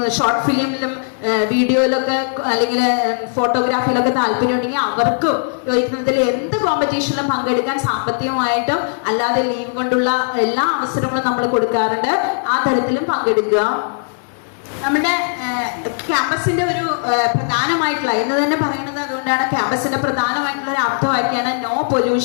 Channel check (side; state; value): right; silent; digital silence